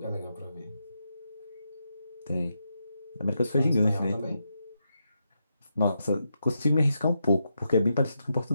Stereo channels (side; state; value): both; inverted; correlation -0.84